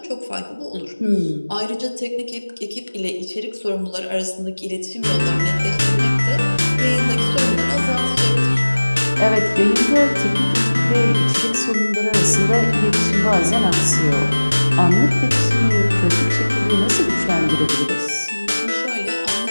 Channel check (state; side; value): inverted; both; correlation -1.00